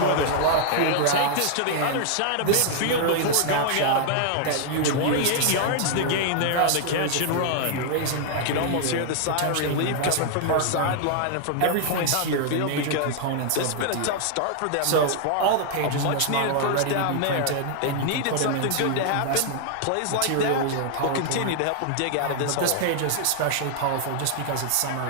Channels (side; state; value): both; different; correlation 0.00